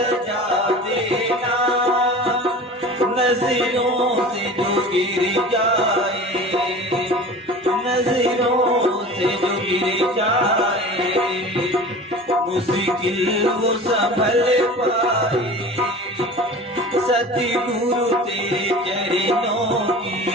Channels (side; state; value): both; normal; correlation 0.38